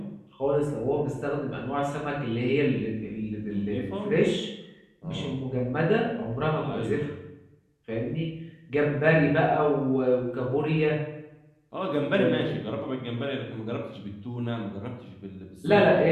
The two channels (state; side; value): identical; both; correlation 1.00